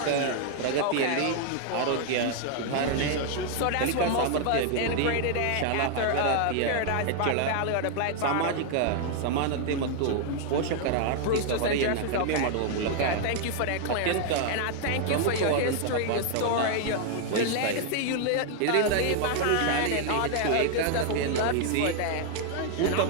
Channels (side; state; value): both; different; correlation 0.00